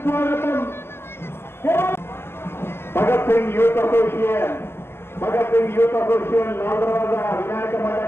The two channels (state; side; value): late; right; 0.12 ms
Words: భగత్ సింగ్ యూత్ అసోసియేషన్ లాల్దర్వాజా వినాయక